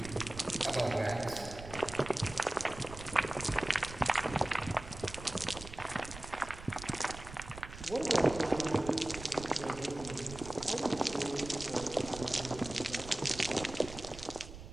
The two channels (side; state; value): right; noise; rumble, 13 dB below the sound